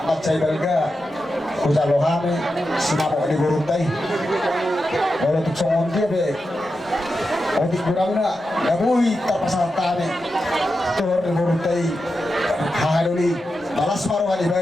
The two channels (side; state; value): both; normal; correlation 0.89